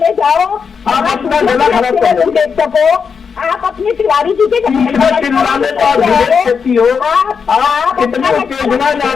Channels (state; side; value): quieter; right; 6.1 dB